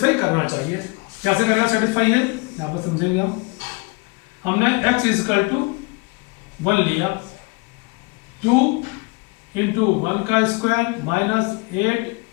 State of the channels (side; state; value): right; quieter; 27.4 dB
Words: करना चाहिए। कैसे करना सेटिस्फाई है, यहाँ पर समझेंगे हम। हमने x इज इक्वल टू 1 लिया, 2 इंटू 1 का स्क्वायर माइनस